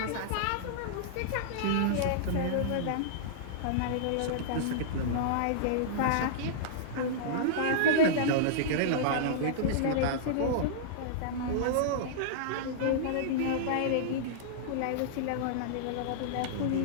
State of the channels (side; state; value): both; different; correlation -0.03